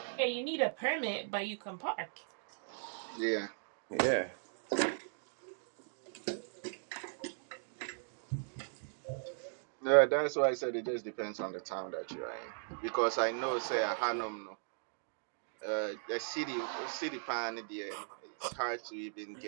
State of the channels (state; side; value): silent; left; digital silence